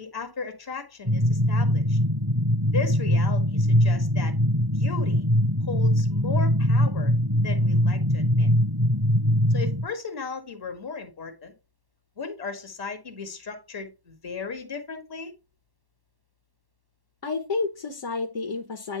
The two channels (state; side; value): late; left; 1.1 ms